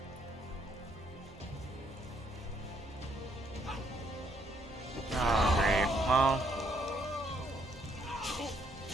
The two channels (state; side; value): normal; both; correlation 0.71